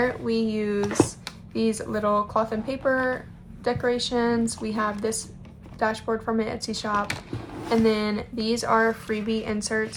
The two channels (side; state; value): both; identical; correlation 1.00